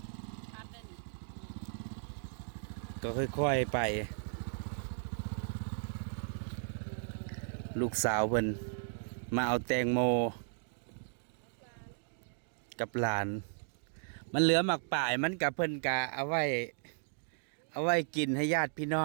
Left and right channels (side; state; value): left; silent; digital silence